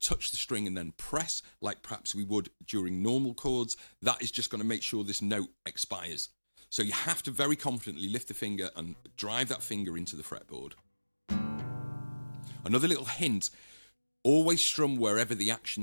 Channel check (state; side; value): inverted; both; correlation -1.00